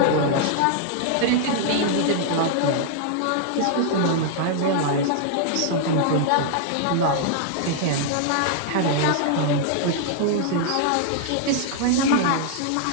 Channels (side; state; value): both; different; correlation -0.01